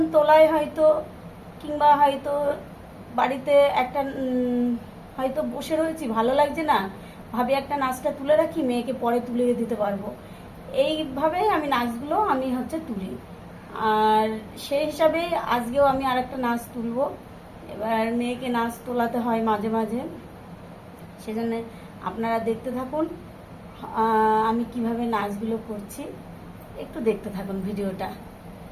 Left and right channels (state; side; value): identical; both; correlation 1.00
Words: তোলায় হয়তো, কিংবা হয়তো বাড়িতে একটা হয়তো বসে রয়েছি, ভালো লাগছে না, ভাবি একটা নাচটা তুলে রাখি, মেয়েকে পরে তুলে দিতে পারবো। এইভাবেই আমি নাচগুলো তুলি। আর সেই হিসাবে আজকেও আমি আর একটা নাচ তুলবো। এবার মেয়েকে নাচ তোলাতে হয় মাঝে মাঝে, সেজন্য আপনারা দেখতে থাকুন আমি কিভাবে নাচগুলো করছি। একটু দেখতে থাকুন ভিডিওটা।